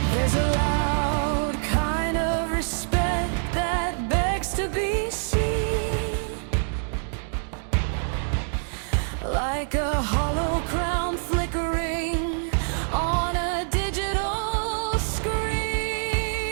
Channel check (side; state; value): left; silent; digital silence